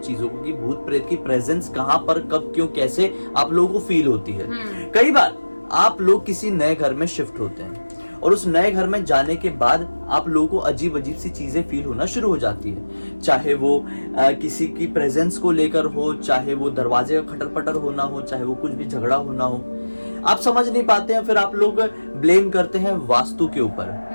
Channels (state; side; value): inverted; both; correlation -1.00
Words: चीजों को कि भूत प्रेत की प्रेजेंस कहां पर, कब, क्यों, कैसे आप लोगों को फील होती है। कई बार आप लोग किसी नए घर में शिफ्ट होते हैं और उस नए घर में जाने के बाद आप लोगों को अजीब अजीब सी चीजें फील होना शुरू हो जाती है, चाहे वो किसी की प्रेजेंस को लेकर हो, चाहे वो दरवाजे का खटर पटर होना हो, चाहे वो कुछ भी झगड़ा होना हो। आप समझ नहीं पाते हैं, फिर आप लोग ब्लेम करते हैं वास्तु के ऊपर,